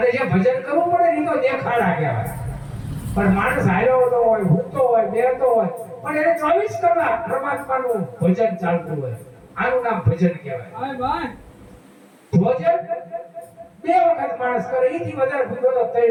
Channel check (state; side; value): identical; both; correlation 1.00